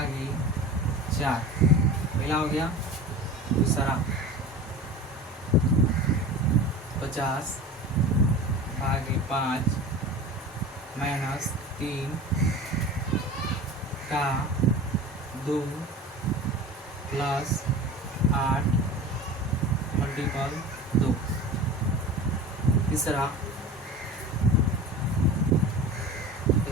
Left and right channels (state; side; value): normal; both; correlation 0.34